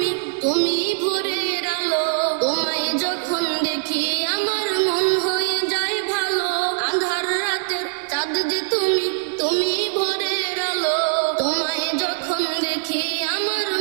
তুমি ভোরের আলো, তোমায় যখন দেখি আমার মন হয়ে যায় ভালো। আঁধার রাতের চাঁদ যে তুমি, তুমি ভোরের আলো, তোমায় যখন দেখি আমার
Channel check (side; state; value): left; silent; 60 dB below the other